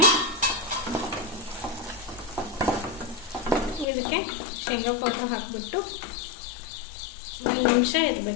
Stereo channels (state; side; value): drops out; right; at 3.9 s